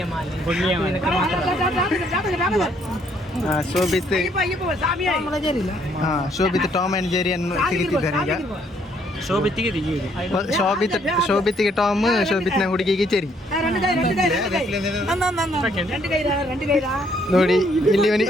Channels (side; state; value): both; normal; correlation 0.68